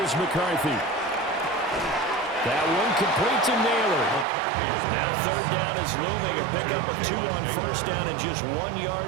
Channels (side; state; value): left; drops out; at 4.2 s